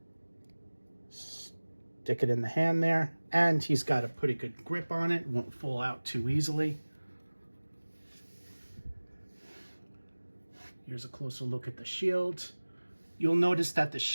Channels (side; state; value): both; inverted; correlation -1.00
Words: Stick it in the hand there, and he's got a pretty good grip on it. Won't fall out too easily. Here's a closer look at the shield. You'll notice that the